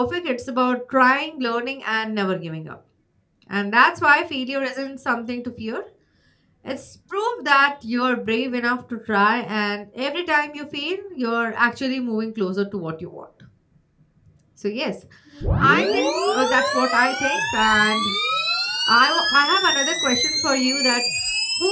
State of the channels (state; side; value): identical; both; correlation 1.00